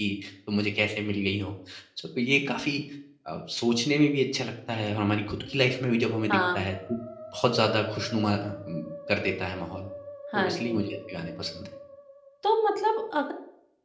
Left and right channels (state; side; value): identical; both; correlation 1.00